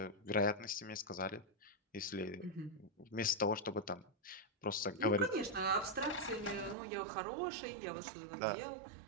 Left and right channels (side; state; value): left; drops out; at 6.8 s